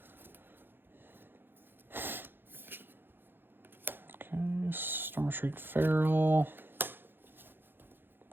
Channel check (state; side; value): late; left; 0.10 ms